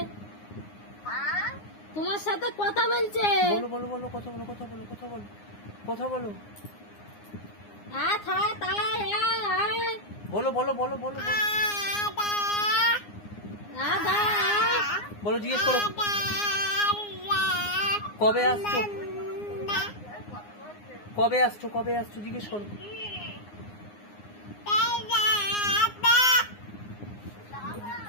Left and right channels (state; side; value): late; right; 9.7 ms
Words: তোমার সাথে কথা বলছে। बोलो बोलो बोलो, কথা বলো, কথা বলো, কথা বলো, কথা বলো, बोलो बोलो बोलो बोलो बोलो, জিজ্ঞেস করো কবে আসছো, কবে আসছো, কবে আসছো, জিজ্ঞেস করো।